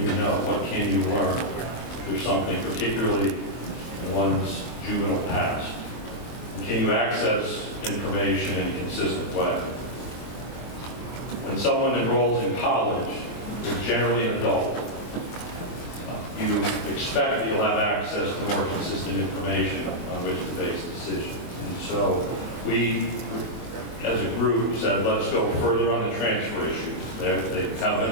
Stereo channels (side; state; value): right; late; 24 ms